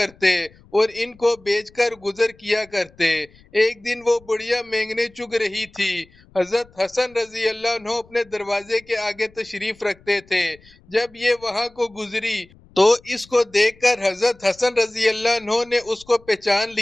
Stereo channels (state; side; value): noise; left; rumble, 27 dB below the sound